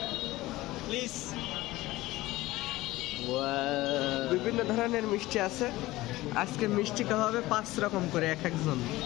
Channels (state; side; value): quieter; right; 18.2 dB